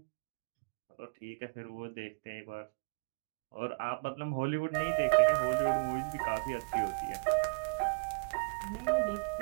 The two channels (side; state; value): left; quieter; 36.1 dB